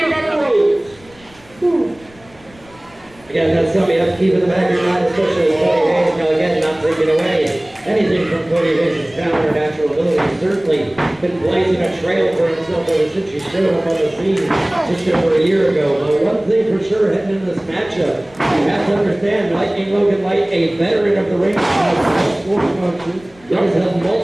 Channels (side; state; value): left; noise; rumble, 26 dB below the sound